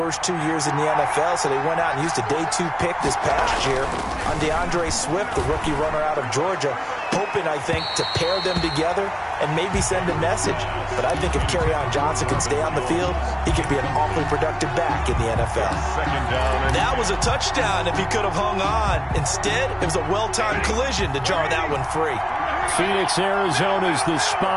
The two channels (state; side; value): identical; both; correlation 1.00